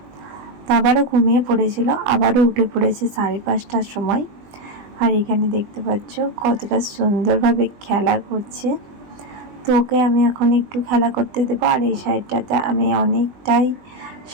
তো আবারও ঘুমিয়ে পড়েছিল, আবারও উঠে পড়েছে 5:30টার সময়। আর এখানে দেখতে পাচ্ছ কতটা সুন্দরভাবে খেলা করছে। তো ওকে আমি এখন একটু খেলা করতে দেবো। আর এই সাইডটাতে আমি অনেকটাই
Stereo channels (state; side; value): late; left; 20 ms